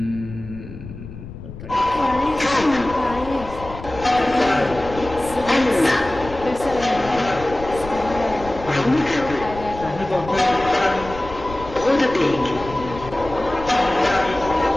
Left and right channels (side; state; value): left; noise; rumble, 13 dB below the sound